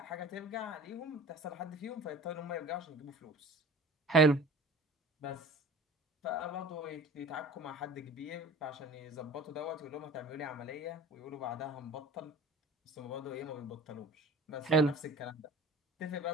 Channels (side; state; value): both; normal; correlation 0.42